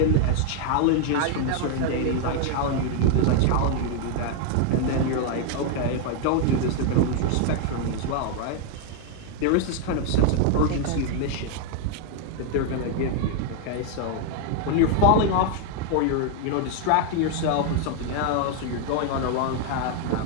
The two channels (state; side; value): different; both; correlation 0.00